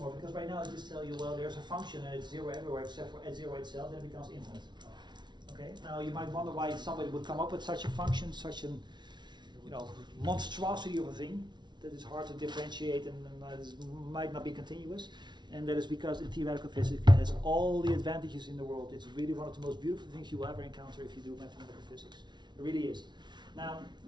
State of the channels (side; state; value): left; late; 0.21 ms